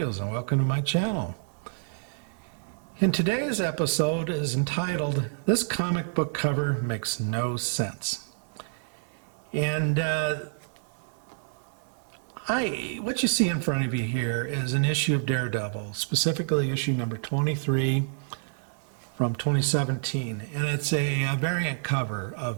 and welcome to my channel. In today's episode is entitled, This Comic Book Cover Makes No Sense. And what you see in front of you here is an issue of Daredevil, specifically issue number 23 from 2017. And it's a variant cover of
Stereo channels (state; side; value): silent; left; 59 dB below the other